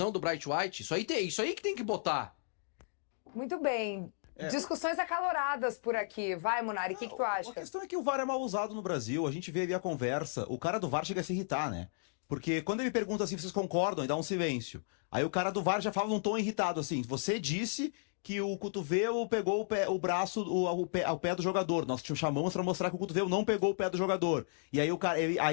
do Bright White. Isso aí que tem que botar. Muito bem. Discussões acaloradas por aqui. Vai, Munari, o que tu acha? A questão é que o VAR é mal usado no Brasil. A gente vê ali a conversa. O cara do VAR chega a se irritar, né? Porque quando ele pergunta assim, vocês concordam? E dá um silêncio. Aí o cara do VAR já fala num tom irritado, assim. Você disse que o cotovelo pegou o braço, o pé do jogador. Nós te chamamos pra mostrar que o cotovelo não pegou o pé do jogador. E aí o cara... Ele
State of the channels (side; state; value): right; silent; digital silence